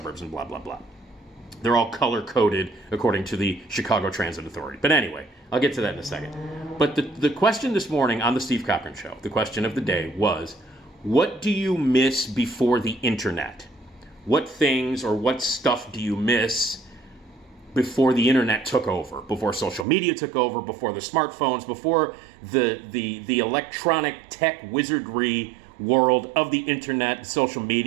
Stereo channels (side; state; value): left; drops out; at 19.9 s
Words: and blah, blah, blah. They're all color-coded according to the Chicago Transit Authority. But anyway, I'll get to that in a second. But the question this morning on the Steve Cochran Show, the question of the day was, what do you miss before the internet? What things or what stuff do you miss before the internet took over, before social media took over, before the smartphones, before the electronic tech wizardry world of the internet, social